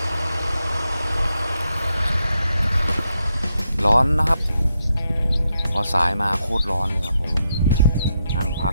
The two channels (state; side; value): inverted; both; correlation -0.82